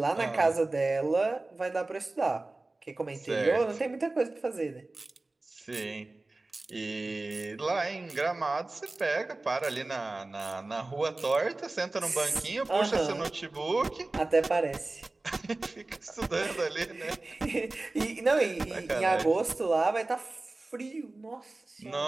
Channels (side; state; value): left; quieter; 3.1 dB